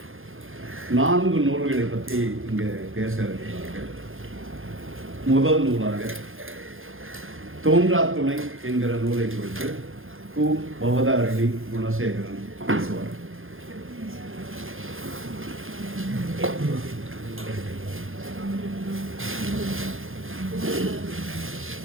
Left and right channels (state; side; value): late; left; 0.60 ms